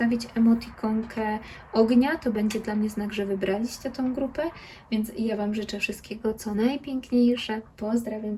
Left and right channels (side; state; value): both; identical; correlation 1.00